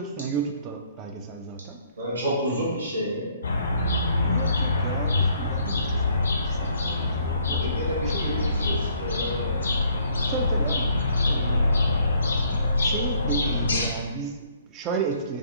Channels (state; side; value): inverted; both; correlation -0.63